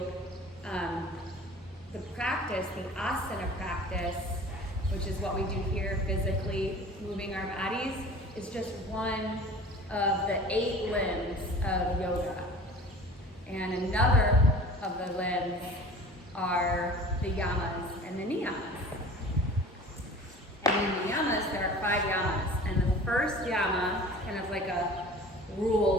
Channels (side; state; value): both; normal; correlation 0.42